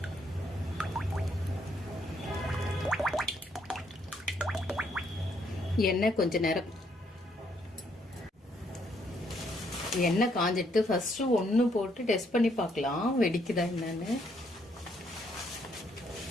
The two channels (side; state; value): both; normal; correlation 0.71